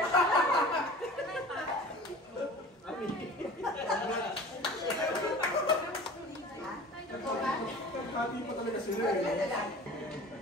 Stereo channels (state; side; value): normal; both; correlation 0.40